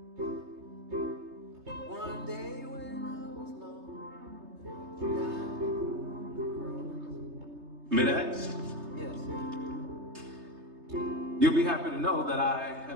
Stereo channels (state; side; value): late; left; 3.3 ms